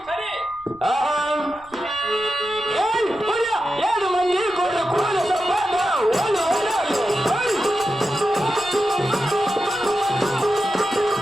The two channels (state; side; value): noise; right; rumble, 26 dB below the sound